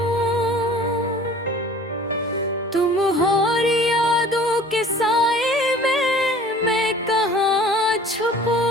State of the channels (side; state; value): both; normal; correlation 0.47